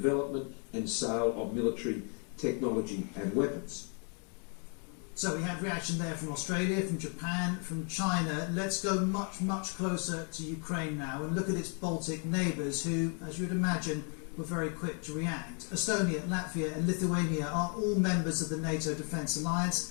and sale of military technology and weapons. So we had reaction there from Australia, from Japan, from China. Let's go much, much closer to Ukraine now and look at its Baltic neighbours who, as you would imagine, were very quick to react. Estonia, Latvia and Lithuania are all members of the NATO Defence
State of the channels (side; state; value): right; quieter; 39.9 dB